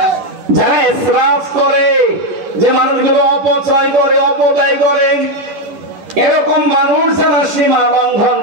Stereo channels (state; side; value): late; left; 10 ms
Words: যারা ইসরাফ করে, যে মানুষগুলো অপচয় করে, অপব্যয় করে, এরকম মানুষ যারা সীমা লঙ্ঘন